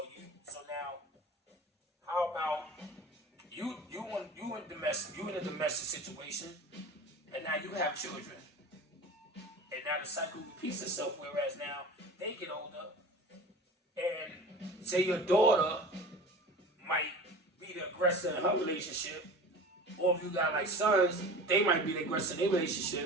now, how about you in a domestic situation and now you have children. And now the cycle repeats itself, whereas now they get older and say your daughter might be the aggressor in her relationship, or if you got like sons, they might be the aggressor in their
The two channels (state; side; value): normal; both; correlation 0.37